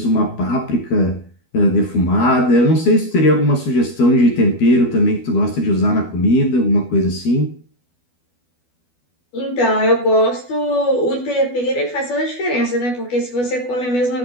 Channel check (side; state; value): right; late; 12 ms